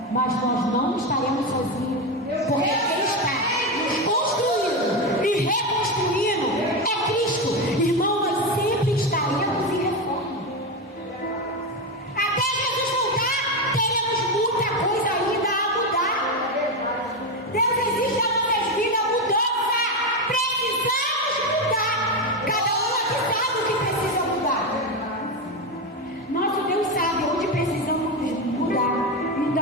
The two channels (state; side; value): normal; both; correlation 0.13